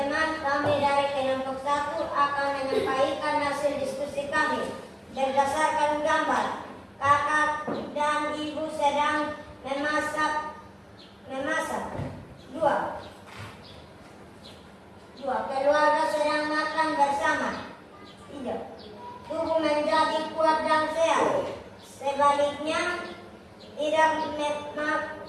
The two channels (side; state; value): both; identical; correlation 1.00